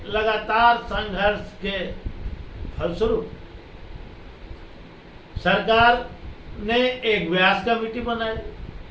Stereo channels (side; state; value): both; identical; correlation 1.00